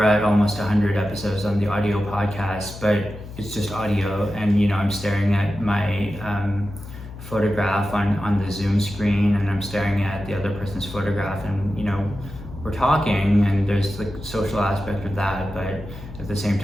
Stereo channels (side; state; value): left; noise; hum, 13 dB below the sound